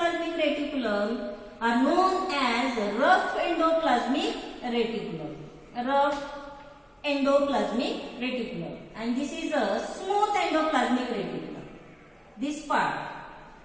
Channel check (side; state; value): both; identical; correlation 1.00